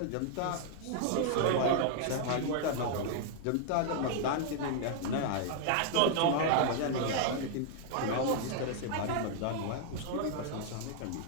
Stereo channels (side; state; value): both; different; correlation -0.01